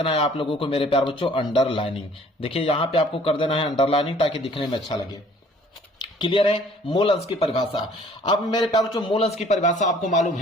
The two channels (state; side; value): normal; both; correlation 0.56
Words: है आप लोगों को मेरे प्यारे बच्चों अंडरलाइनिंग। देखिए यहाँ पे आपको कर देना है अंडरलाइनिंग ताकि दिखने में अच्छा लगे। क्लियर है मोल अंश की परिभाषा। अब मेरे प्यारे बच्चों मोल अंश की परिभाषा आपको मालूम